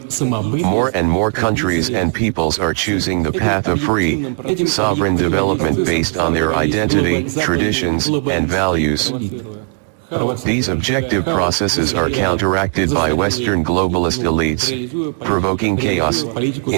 More and more countries and peoples are choosing the path of free, sovereign development based on their identity, traditions, and values. These objective processes are counteracted by Western globalist elites, provoking chaos,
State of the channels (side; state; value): left; silent; 64 dB below the other